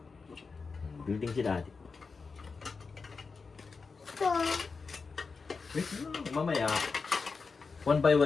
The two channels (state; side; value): quieter; right; 4.7 dB